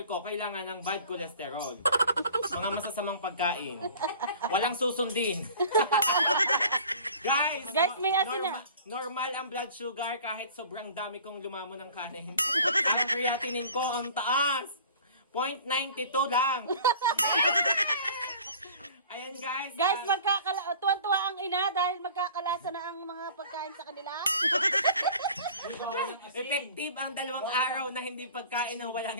ko, kailangan ng bad cholesterol. Mga masasamang pagkain. Walang susundin. Guys, Guys, may asin na. Normal ang blood sugar kahit sobrang dami kong lumamo ng kanin. Ang creatinine ko ang taas. 0.92 lang. Ayan guys. Guys, tuwan-tuwa ang ina dahil magkakalasa na ang mga pagkain sa kanila. Effective ang 2 araw na hindi pagkain ng walang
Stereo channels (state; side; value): inverted; both; correlation -0.45